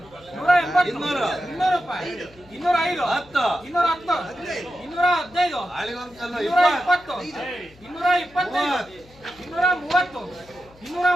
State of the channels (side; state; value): left; noise; hum, 26 dB below the sound